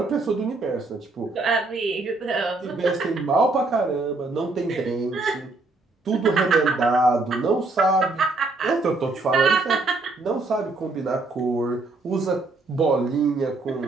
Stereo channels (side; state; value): left; quieter; 3.4 dB